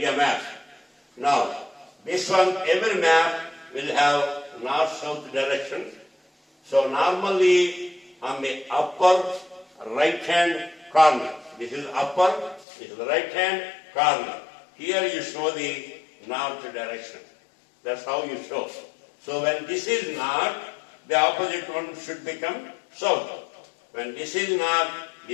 map. Now, this one, every map will have north-south direction. So normally on the upper right-hand corner, this is upper, this is the right-hand corner. Here you show the north direction. That's how you show. So when this is north, the opposite one should become south. When this is north,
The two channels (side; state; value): right; drops out; at 12.7 s